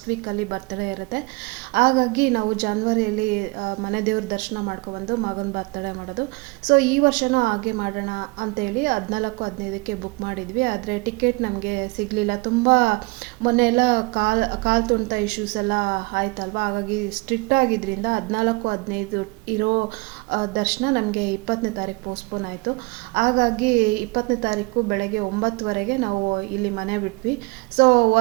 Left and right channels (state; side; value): quieter; left; 26.5 dB